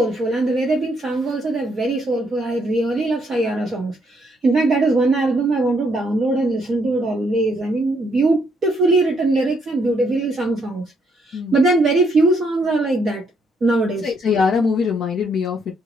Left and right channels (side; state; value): both; normal; correlation 0.72